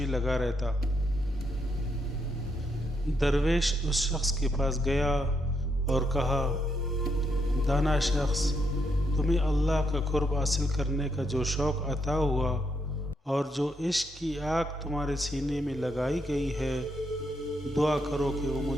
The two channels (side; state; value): both; normal; correlation 0.78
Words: لگا رہتا۔ درویش اس شخص کے پاس گیا اور کہا، دانا شخص، تمہیں اللہ کا قرب حاصل کرنے کا جو شوق عطا ہوا اور جو عشق کی آگ تمہارے سینے میں لگائی گئی ہے، دعا کرو کہ وہ